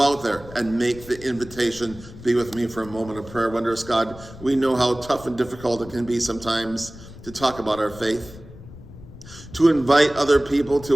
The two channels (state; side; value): noise; left; rumble, 17 dB below the sound